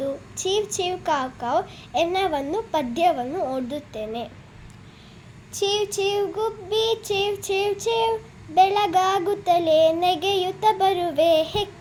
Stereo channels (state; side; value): identical; both; correlation 1.00